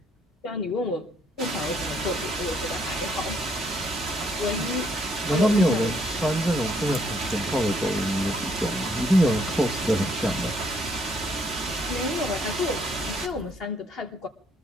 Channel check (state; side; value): normal; both; correlation 0.69